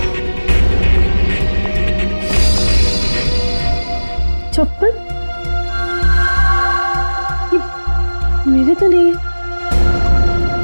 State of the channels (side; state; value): both; inverted; correlation -1.00